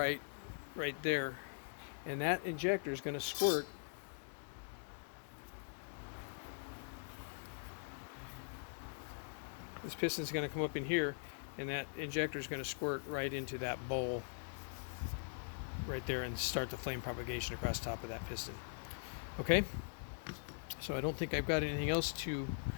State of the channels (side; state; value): right; silent; digital silence